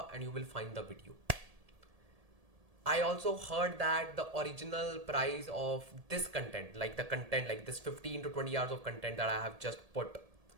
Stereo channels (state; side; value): late; left; 1.7 ms